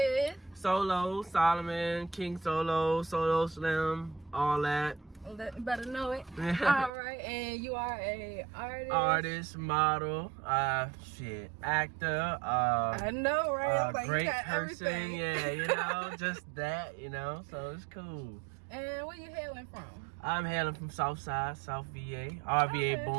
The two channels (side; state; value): left; drops out; at 6.9 s